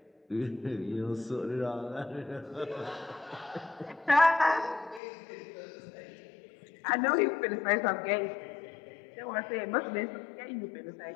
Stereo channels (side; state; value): right; drops out; at 5.0 s